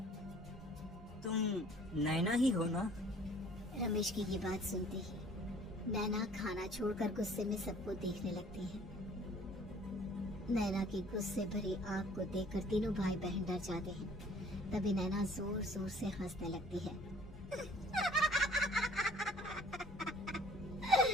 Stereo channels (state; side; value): normal; both; correlation 0.54